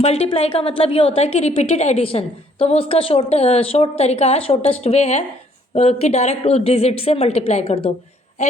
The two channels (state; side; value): normal; both; correlation 0.64